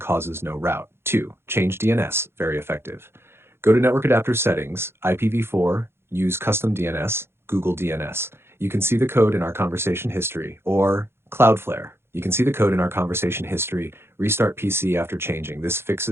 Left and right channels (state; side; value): late; left; 0.12 ms